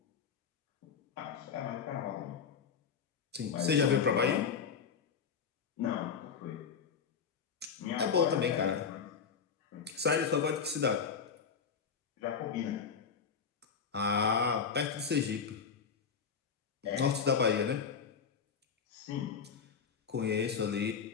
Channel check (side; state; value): right; quieter; 6.3 dB